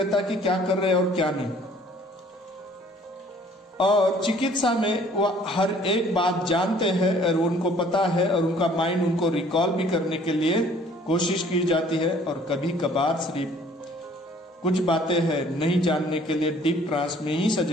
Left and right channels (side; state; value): both; normal; correlation 0.56